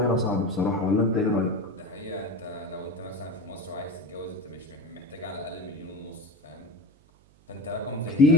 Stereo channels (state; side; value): noise; right; hum, 29 dB below the sound